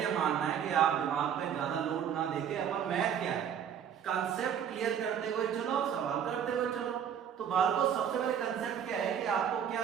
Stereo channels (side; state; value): left; quieter; 8.5 dB